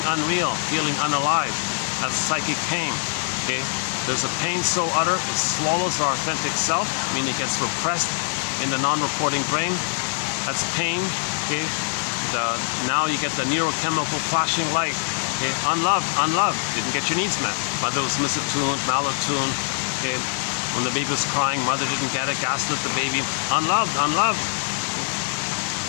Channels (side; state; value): right; silent; 60 dB below the other